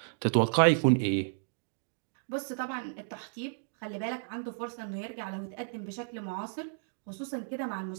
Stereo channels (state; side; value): silent; left; digital silence